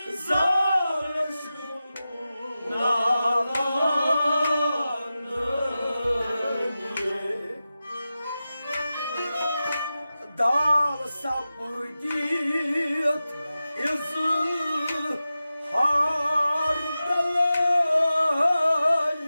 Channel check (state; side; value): inverted; both; correlation -0.93